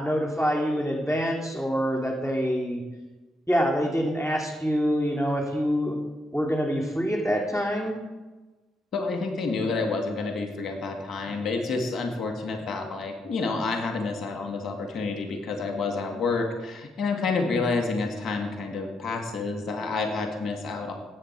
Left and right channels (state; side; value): normal; both; correlation 0.80